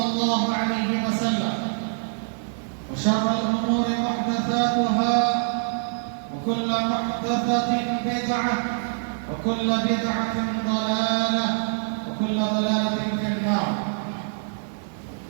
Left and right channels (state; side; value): silent; left; digital silence